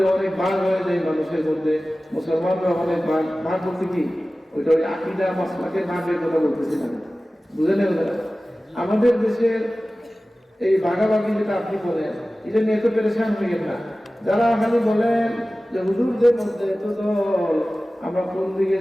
অনেক ভাগ হয়ে যাই মানুষের মধ্যে, মুসলমানরা অনেক ভাগ বলতে কি ওইটা ওই আকীদা মাসলাকের ভাগের কথা বলতেছি না, বুঝে নেব। আমাদের দেশের এই ভাগাভাগি যেটা আপনি বলেন, এটা নিয়ে তো পেরেশান হইয়েন না। যারা খালি বলেন যে হুজুরদের মধ্যে এত দল, আমরা কোন দিকে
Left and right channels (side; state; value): both; normal; correlation 0.96